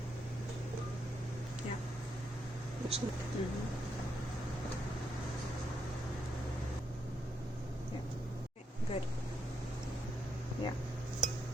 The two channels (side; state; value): both; normal; correlation 0.80